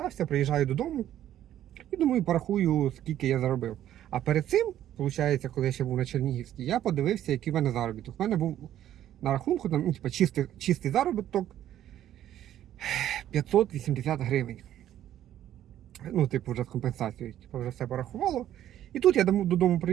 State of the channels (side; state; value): left; quieter; 11.8 dB